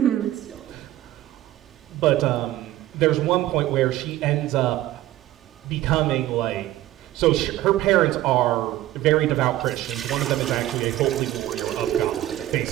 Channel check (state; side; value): quieter; left; 14.9 dB